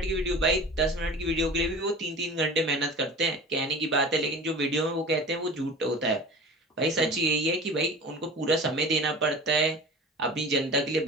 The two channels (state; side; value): normal; both; correlation 0.38